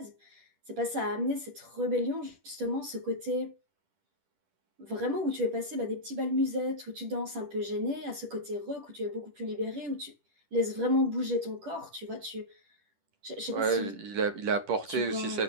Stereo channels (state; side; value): late; left; 10 ms